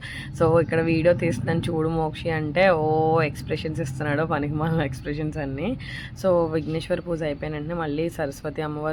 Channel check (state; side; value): identical; both; correlation 1.00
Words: సో ఇక్కడ వీడియో తీస్తున్నాను చూడు మోక్షి అంటే ఓ ఎక్స్ప్రెషన్స్ ఇస్తున్నాడు, పనికి మాలిన ఎక్స్ప్రెషన్స్ అన్నీ. సో విఘ్నేశ్వర పూజ అయిపోయిన వెంటనే మళ్ళీ సరస్వతి